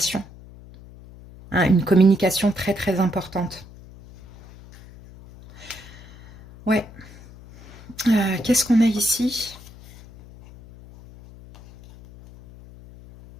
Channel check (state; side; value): noise; left; hum, 20 dB below the sound